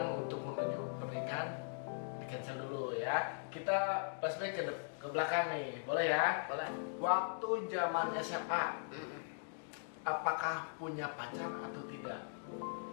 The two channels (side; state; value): right; silent; digital silence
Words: untuk menuju pernikahan di cancel dulu ya. Kita flashback ke belakang nih, boleh ya? Boleh. Waktu zaman SMA, apakah punya pacar atau tidak?